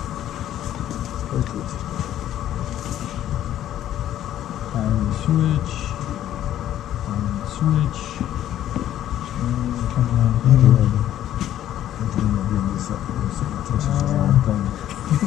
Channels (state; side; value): quieter; right; 11.9 dB